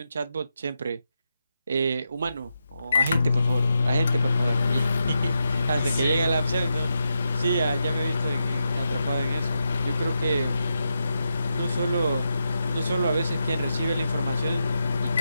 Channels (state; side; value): inverted; both; correlation -0.86